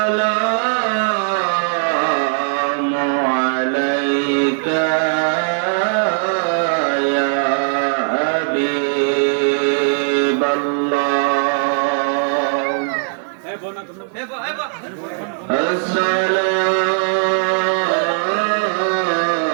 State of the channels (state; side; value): silent; left; 66 dB below the other